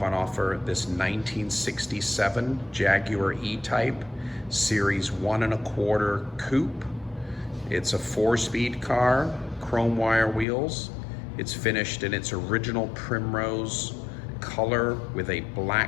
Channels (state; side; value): drops out; right; at 10.5 s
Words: on offer this 1967 Jaguar E-Type Series 1 1/4 Coupe. It's a 4-speed car, chrome wire wheels. It's finished in its original Primrose color with a